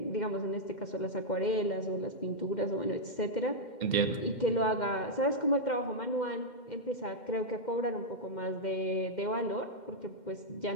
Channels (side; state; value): right; late; 2.1 ms